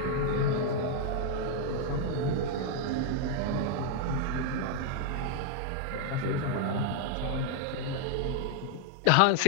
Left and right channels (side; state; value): both; different; correlation 0.00